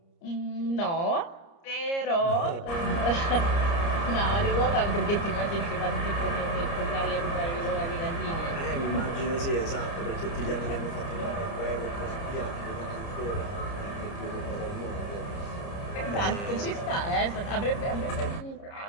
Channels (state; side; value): late; right; 30 ms